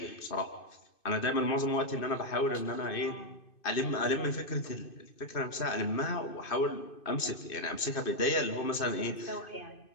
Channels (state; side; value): late; right; 2.5 ms